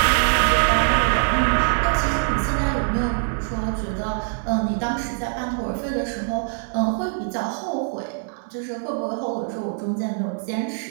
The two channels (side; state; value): left; silent; digital silence